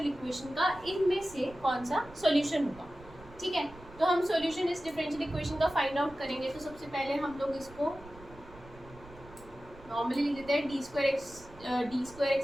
इक्वेशन का इनमें से कौन सा सॉल्यूशन होगा। ठीक है, तो हम सॉल्यूशन इस डिफरेंशियल इक्वेशन का फाइंड आउट करेंगे। तो सबसे पहले हम लोग इसको नॉर्मली लिख देते हैं D square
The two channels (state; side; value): noise; right; rumble, 20 dB below the sound